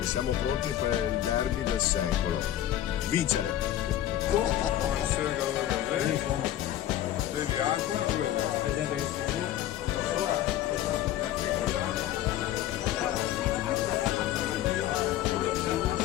siamo pronti per il derby del secolo. Vincere! Vedi acqua?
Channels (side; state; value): right; quieter; 12.5 dB